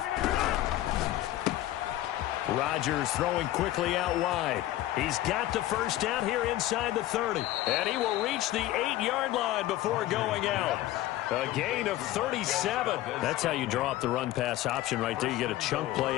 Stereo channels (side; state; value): right; quieter; 15.0 dB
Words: Rodgers throwing quickly out wide. He's got the first down here inside the 30. And he will reach the 8-yard line before going out. A gain of 37. That's how you draw up the run-pass option right there. You get a chunk